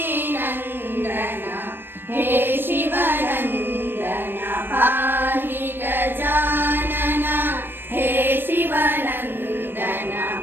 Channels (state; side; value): late; left; 0.098 ms